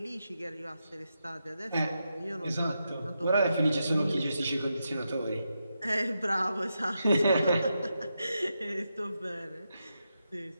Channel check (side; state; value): both; inverted; correlation -0.86